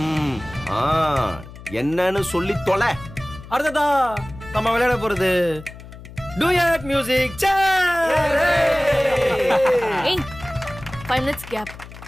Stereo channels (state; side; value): noise; left; hum, 16 dB below the sound